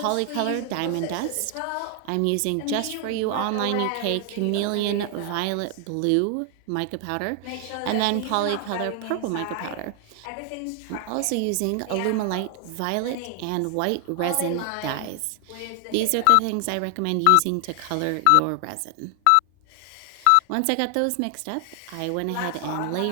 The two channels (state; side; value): different; both; correlation 0.00